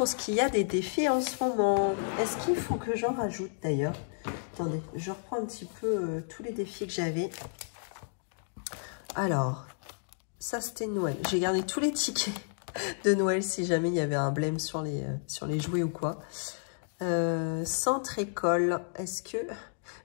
ce qu'il y a des défis en ce moment. Est-ce qu'il faut que j'en rajoute d'ailleurs? Attendez, je reprends un petit peu tous les défis que j'avais. Alors, ça c'était Noël. J'ai gardé tous les tickets de Noël si jamais il y avait un blême sur les jouets ou quoi. Centre école, est-ce que... Il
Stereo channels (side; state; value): right; silent; digital silence